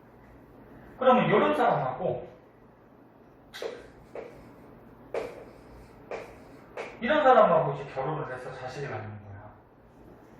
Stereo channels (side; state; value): both; identical; correlation 1.00